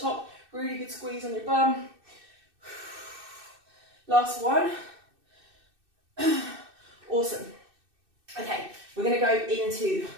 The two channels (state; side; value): late; left; 2.6 ms